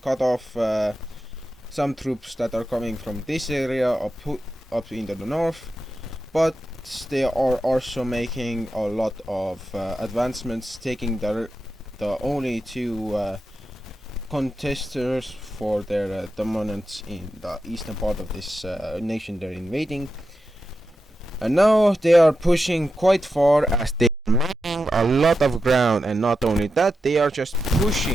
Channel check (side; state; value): both; normal; correlation 0.89